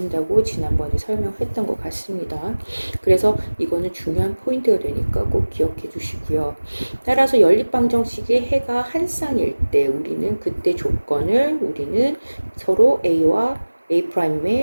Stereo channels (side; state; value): both; inverted; correlation -1.00